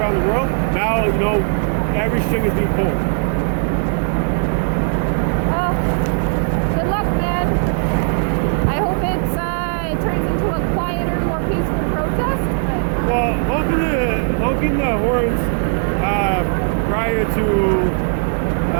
the world, now, you know, every string is being pulled. Good luck, man. I hope it turns into a quieter, more peaceful protest. Well, honking the horns prior to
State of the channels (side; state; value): left; silent; 67 dB below the other